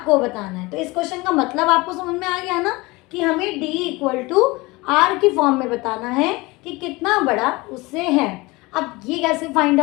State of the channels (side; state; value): right; quieter; 22.9 dB